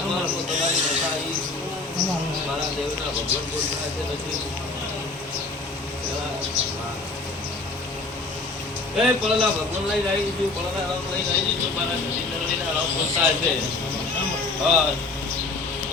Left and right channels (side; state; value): right; quieter; 3.5 dB